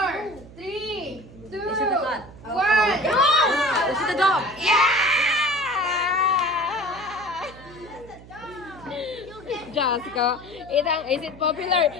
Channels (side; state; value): right; noise; hum, 19 dB below the sound